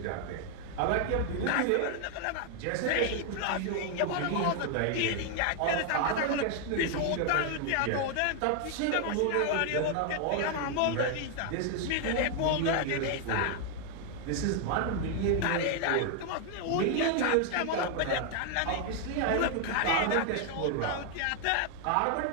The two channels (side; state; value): both; different; correlation 0.00